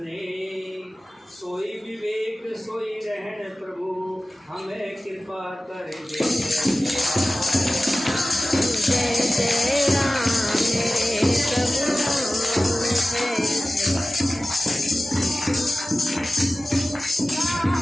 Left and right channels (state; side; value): normal; both; correlation 0.96